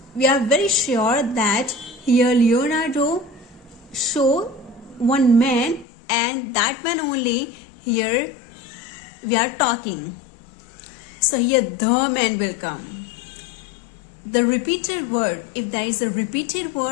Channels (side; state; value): right; drops out; at 5.9 s